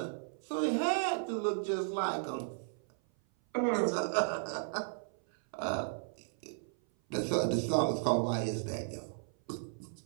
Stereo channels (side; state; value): left; silent; 55 dB below the other